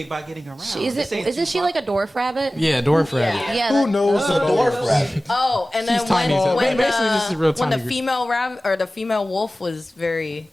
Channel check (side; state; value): both; normal; correlation 0.96